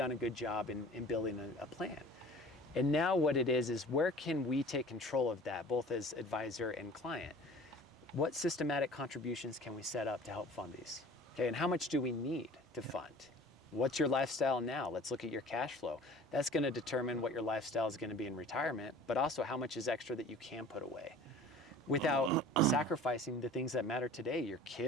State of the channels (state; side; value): normal; both; correlation 0.45